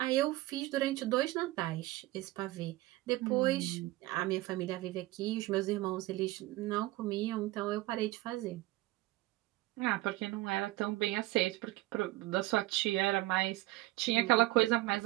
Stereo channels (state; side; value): quieter; left; 18.5 dB